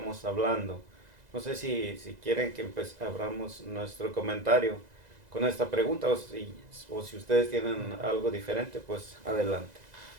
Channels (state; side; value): late; left; 2.0 ms